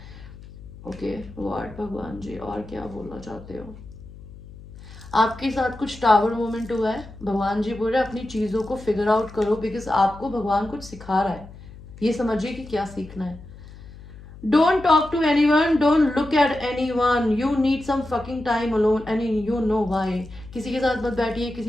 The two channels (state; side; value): noise; left; hum, 17 dB below the sound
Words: Okay what भगवान जी और क्या बोलना चाहते हो? आपके साथ कुछ टावर मोमेंट हुआ है, भगवान जी बोल रहे हैं अपनी चीजों को फिगर आउट करो, बिकॉज आपको भगवान कुछ सिखा रहा है, ये समझिए कि क्या सीखना है। Don't talk to anyone, don't look at anyone, you need some fucking time alone and you know why। किसी के साथ मत बैठिए,